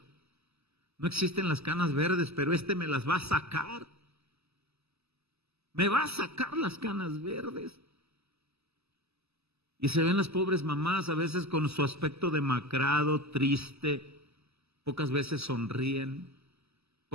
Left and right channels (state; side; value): late; left; 0.79 ms